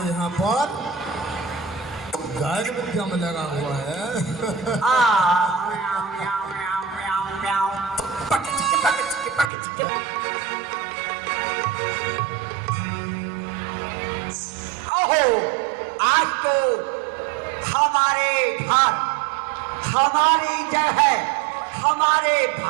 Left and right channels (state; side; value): drops out; left; at 9.5 s